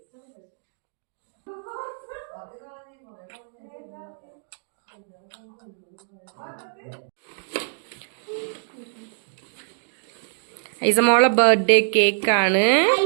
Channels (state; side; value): silent; left; digital silence